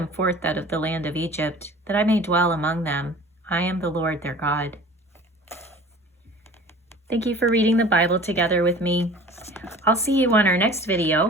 forth out of the land of Egypt, that I may dwell among them. I am the Lord their God. Thank you for reading the Bible together with me. I'll see you on our next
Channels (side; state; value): both; normal; correlation 0.43